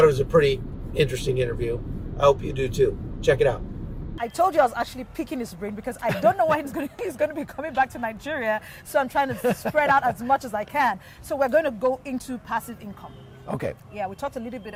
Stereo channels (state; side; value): identical; both; correlation 1.00